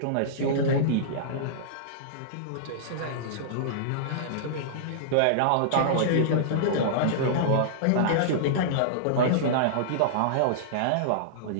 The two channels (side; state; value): both; different; correlation -0.02